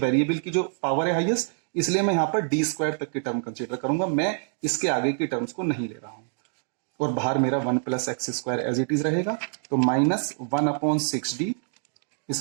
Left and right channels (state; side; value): silent; left; 61 dB below the other